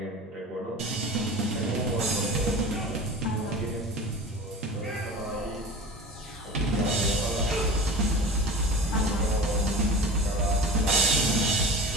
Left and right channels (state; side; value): normal; both; correlation 0.36